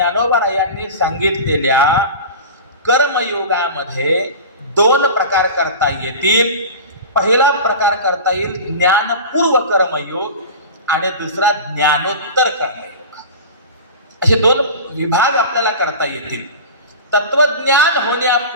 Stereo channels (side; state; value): both; inverted; correlation -0.32